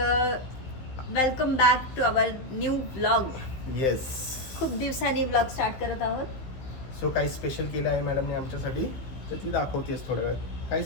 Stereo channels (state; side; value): late; right; 15 ms